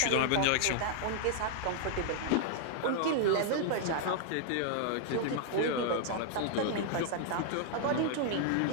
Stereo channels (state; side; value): different; both; correlation -0.01